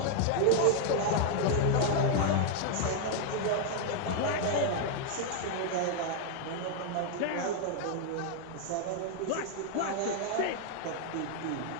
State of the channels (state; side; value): different; both; correlation 0.01